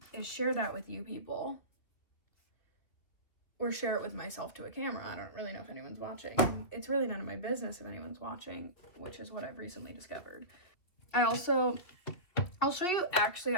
is share that with you people, or share it with myself to a camera. I don't really know if anyone's watching. It's really none of my business if anyone's watching, which is what I've recently discovered. I'll show you, actually,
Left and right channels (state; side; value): late; right; 2.9 ms